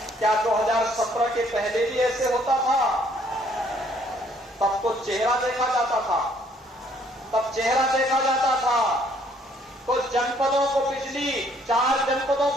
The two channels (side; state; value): both; normal; correlation 0.64